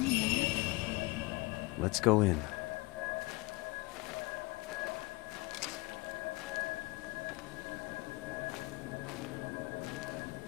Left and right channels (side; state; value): right; quieter; 24.1 dB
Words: there? Let's go in.